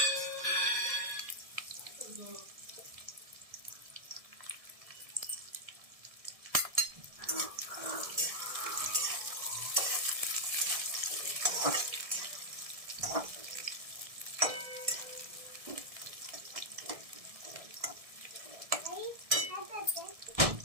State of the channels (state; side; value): late; left; 1.6 ms